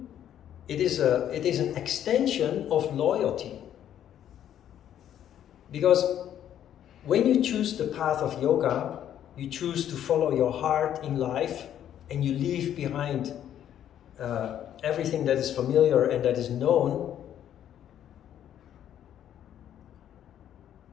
it is an extension of loyalty. Because when you choose the path of yoga, you choose to follow your heart in life, and you leave behind everything that is familiar and that is known.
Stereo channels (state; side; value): quieter; right; 10.5 dB